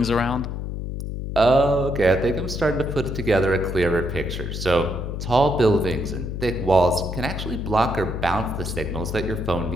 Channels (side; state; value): left; noise; hum, 5 dB below the sound